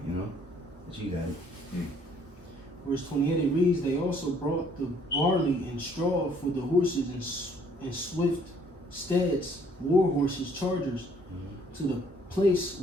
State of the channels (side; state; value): both; normal; correlation 0.62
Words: But you got it. Verse 28, it reads, they also brought the barley and straw for the horses and swift steeds, war horses, chargers, to the place